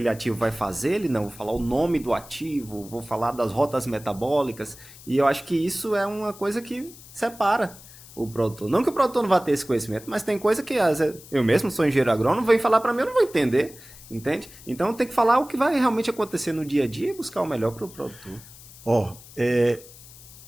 ativo vai fazer, vou falar o nome do ativo, vou falar das rotas metabólicas, e eu acho que isso é uma coisa que separa o produtor. Não que o produtor não vá ter esse conhecimento, mas tem coisa que eu mesmo sou engenheiro agrônomo, vem falar para mim, eu não vou entender, entende? Então tem que falar o que vai realmente acontecer no dia a dia e buscar o melhor para o produtor.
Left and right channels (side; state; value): left; noise; hiss, 19 dB below the sound